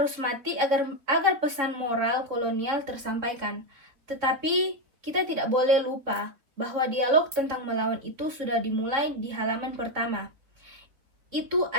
mati agar pesan moral kolonial tersampaikan. Tetapi kita tidak boleh lupa bahwa dialog tentang melawan itu sudah dimulai di halaman pertama. Itu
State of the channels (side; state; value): left; late; 4.0 ms